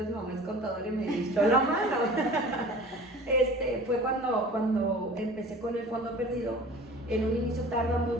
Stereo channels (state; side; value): normal; both; correlation 0.42